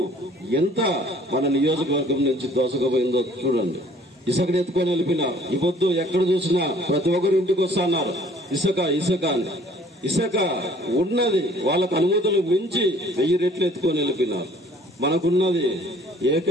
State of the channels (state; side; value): normal; both; correlation 0.55